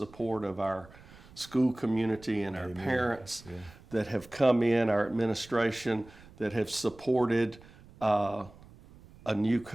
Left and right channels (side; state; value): right; noise; rumble, 22 dB below the sound